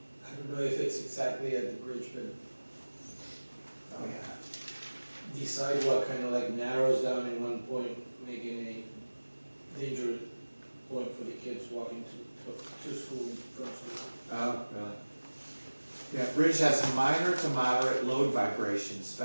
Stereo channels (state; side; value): inverted; both; correlation -1.00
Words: I don't know if it's exactly at the bridge, but Oh, yeah. the sidewalk kind of like narrows down in one point, making a dangerous point for the kids walking to school, from school. Oh, really? Yeah, bridge has minor to moderate load vibrations